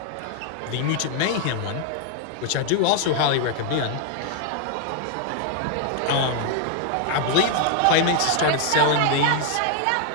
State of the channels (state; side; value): different; both; correlation 0.00